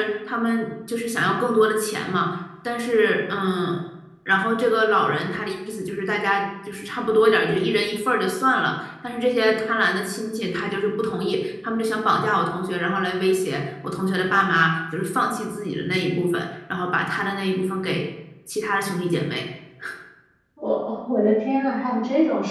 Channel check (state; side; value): identical; both; correlation 1.00